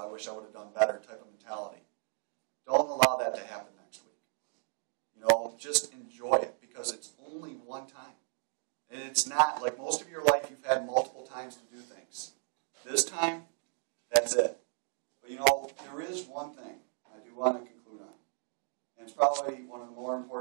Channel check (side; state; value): left; silent; 55 dB below the other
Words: wish I would have done better type of mentality. Don't allow that to happen next week. Just enjoy it, because it's only one time. And it's not, like most of your life, you've had multiple times to do things. This time, that's it. But there is one thing I do want to conclude on. And it's probably one of the more